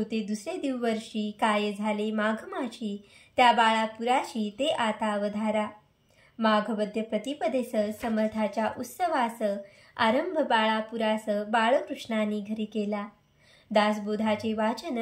दुसरे दिवशी काय झाले माघ माझी, त्या बाळापुराशी ते आता अवधारा. माघवद्य प्रतिपदेस समर्थाच्या उत्सवास आरंभ बाळापुरास बाळकृष्णाने घरी केला. दासबोधाचे वाचन,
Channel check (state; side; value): identical; both; correlation 1.00